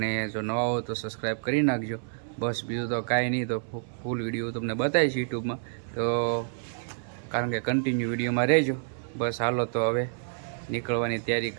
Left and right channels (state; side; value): silent; left; 59 dB below the other